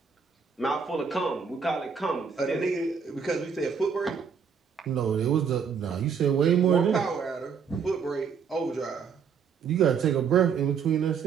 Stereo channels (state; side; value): quieter; left; 6.4 dB